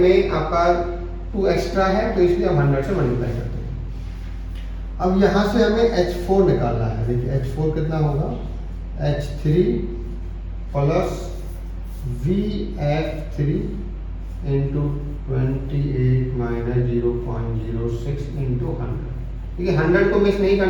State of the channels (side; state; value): both; identical; correlation 1.00